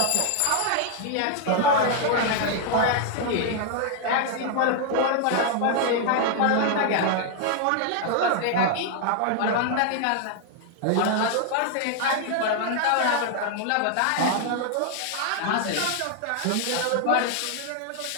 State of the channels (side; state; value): both; different; correlation 0.00